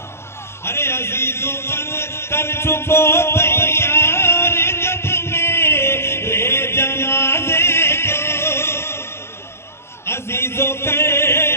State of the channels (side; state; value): right; late; 0.12 ms